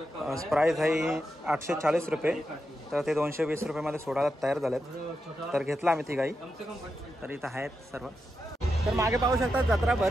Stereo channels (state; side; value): normal; both; correlation 0.87